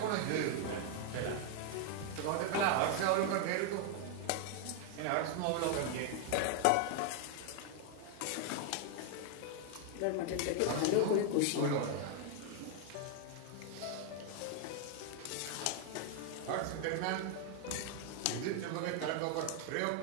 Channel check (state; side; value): different; both; correlation 0.00